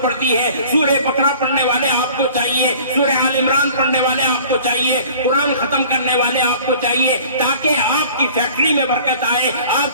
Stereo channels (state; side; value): inverted; both; correlation -0.48